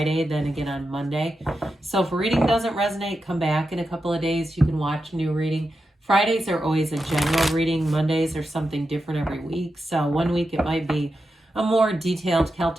then again on Monday. So if a reading doesn't resonate, come back in a couple of days. You can watch a new reading. Fridays are always a general reading. Mondays are something different every week. So one week it might be a more detailed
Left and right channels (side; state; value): both; normal; correlation 0.89